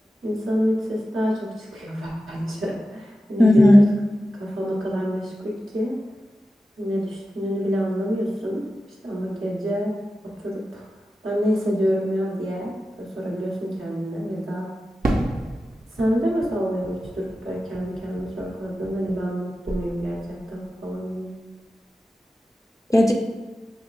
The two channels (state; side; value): normal; both; correlation 0.92